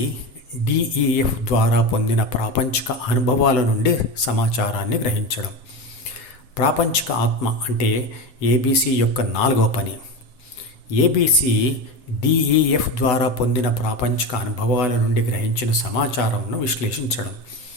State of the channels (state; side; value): late; right; 7.5 ms